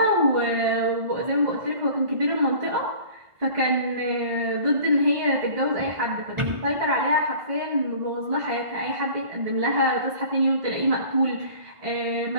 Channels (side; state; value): left; late; 1.5 ms